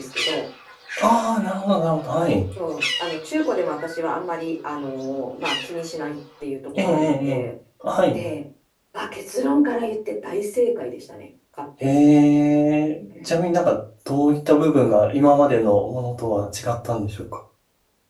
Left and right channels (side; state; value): both; identical; correlation 1.00